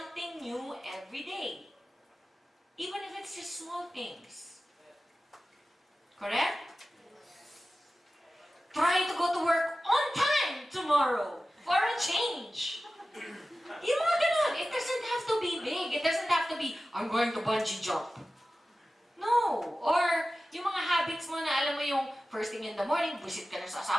new every day. Even if it's just small things. Correct? Try to go to work on time tomorrow for a change. Yung mga ganun. It doesn't have to be big. It doesn't have to be, I'm going to bungee jump. No. Or yung mga habits mo na alam mo yung first thing in the morning, visit ka na sa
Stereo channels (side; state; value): both; normal; correlation 0.95